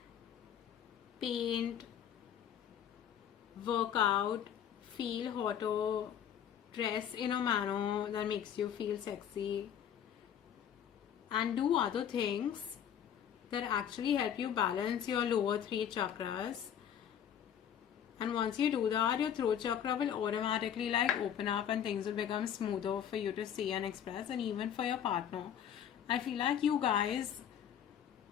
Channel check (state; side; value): quieter; right; 9.2 dB